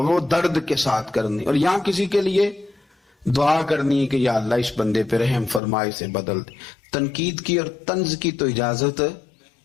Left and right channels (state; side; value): drops out; right; at 5.6 s